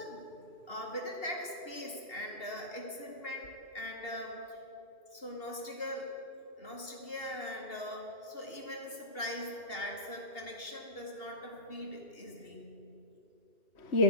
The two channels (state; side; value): late; right; 2.7 ms